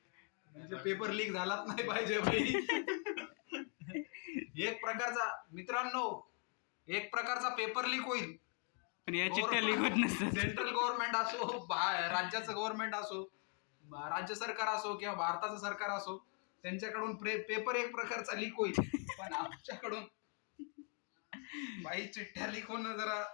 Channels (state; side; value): quieter; right; 38.8 dB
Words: म्हणजे पेपर लीक झालाच नाही पाहिजे भाई. एक प्रकारचा मित्रांनो एक प्रकारचा पेपर लीक होईल. पण या चिठ्ठ्या लिखत नसतात. सेंट्रल गव्हर्नमेंट असो राज्याचं गव्हर्नमेंट असो राज्य सरकार असो किंवा भारताचं सरकार असो त्यांच्याकडून पेपर एक प्रकारचा लीक होईल. पण आमच्याकडून बाई चिठ्ठ्या लीक होणं जरा